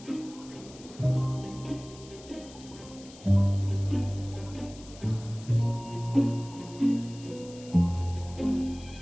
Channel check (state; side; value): noise; left; hiss, 20 dB below the sound